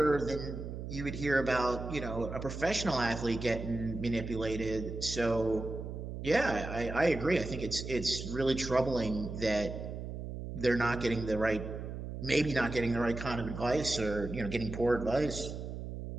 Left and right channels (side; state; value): right; noise; hum, 7 dB below the sound